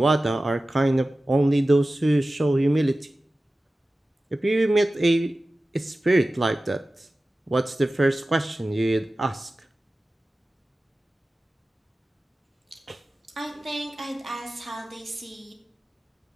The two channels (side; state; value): both; normal; correlation 0.96